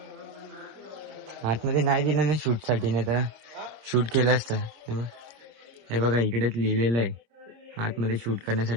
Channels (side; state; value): left; late; 26 ms